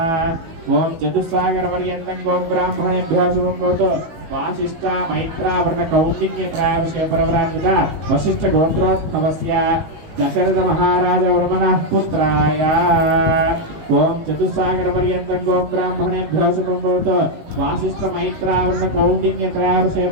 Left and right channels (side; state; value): left; late; 19 ms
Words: ఓం చతుస్సాగర పర్యంతం గోం బ్రాహ్మణేభ్యో శుభం భవతు. వాసిష్ఠ మైత్రావరణ కౌండిన్య ప్రాయవశే ప్రవరాన్విత వశిష్ఠ గోత్రోద్భవస్య దశరథ మహారాజ వర్మణ పుత్రాయ ఓం చతుస్సాగర పర్యంతం గోం బ్రాహ్మణేభ్యో శుభం భవతు. వాసిష్ఠ మైత్రావరణ కౌండిన్య ప్రాయవశే